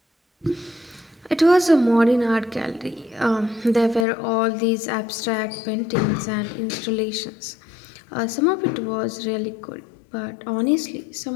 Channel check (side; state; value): right; drops out; at 4.0 s